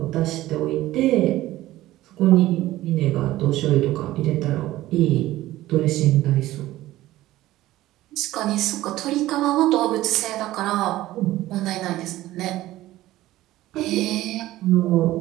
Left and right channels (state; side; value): quieter; left; 15.9 dB